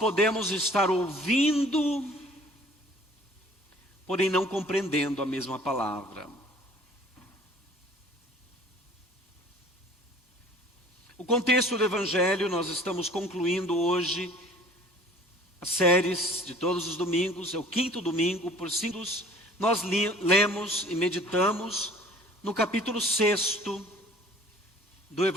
estar ouvindo, porém não compreendendo a mesma palavra. O contexto do Evangelho, nós estamos concluindo hoje as séries de todos os domingos, é o 5º domingo, por 5 nós lemos e meditamos no capítulo 6 do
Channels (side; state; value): both; normal; correlation 0.50